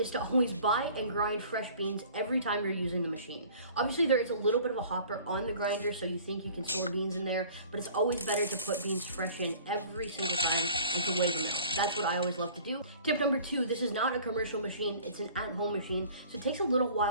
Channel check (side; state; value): both; inverted; correlation -0.48